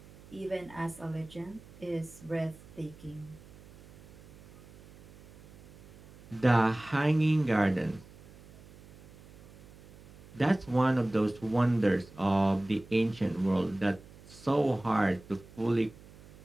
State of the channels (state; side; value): noise; right; hum, 21 dB below the sound